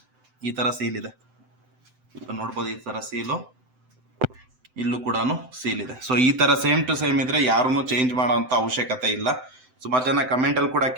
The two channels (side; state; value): left; late; 7.8 ms